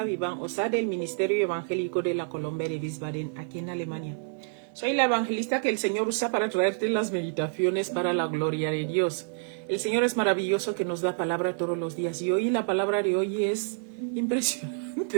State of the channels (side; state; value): left; silent; 59 dB below the other